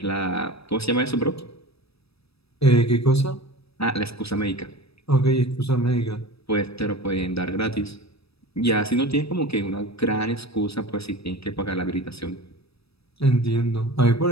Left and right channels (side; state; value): right; late; 0.78 ms